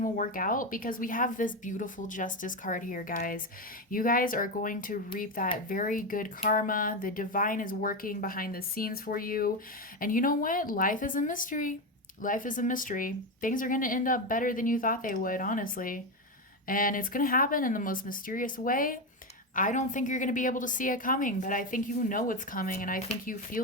will work out because we have this beautiful justice card here, guys. You guys are going to reap that very good karma. The divine is working behind the scenes for you. And you know what? Life is a mystery. Life is a mystery. Things are going to end up better than you thought they would, honestly. And it's going to happen in the most mysterious way. I don't think you're going to be able to see it coming, but I think you know it's coming, and I think you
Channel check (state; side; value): normal; both; correlation 0.13